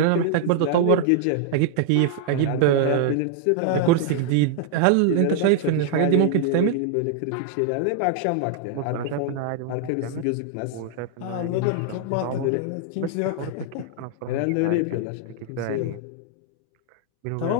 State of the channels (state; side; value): different; both; correlation 0.00